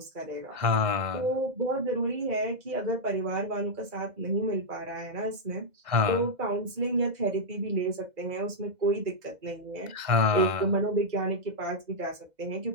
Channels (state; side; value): late; left; 2.0 ms